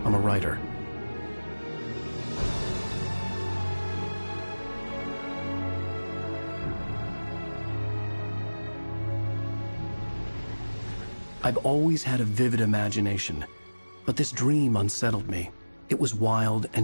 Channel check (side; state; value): both; inverted; correlation -1.00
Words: I'm a writer. I've always had a vivid imagination, but this dream unsettled me. It was wild